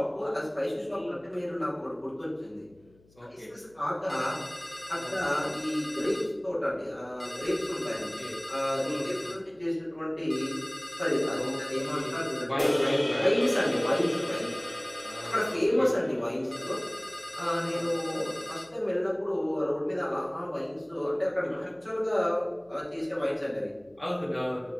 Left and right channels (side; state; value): left; noise; hum, 29 dB below the sound